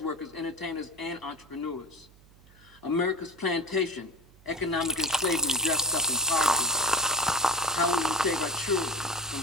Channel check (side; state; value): right; noise; hum, 26 dB below the sound